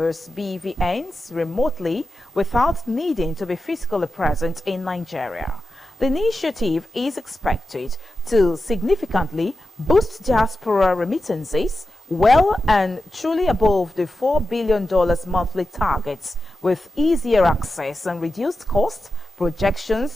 BVNs, remotely without needing to be physically present in Nigeria. The initiative is expected to significantly boost diaspora remittances well and truly above the $4 billion monthly targets, with easier access and reduced cost.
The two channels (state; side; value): normal; both; correlation 0.91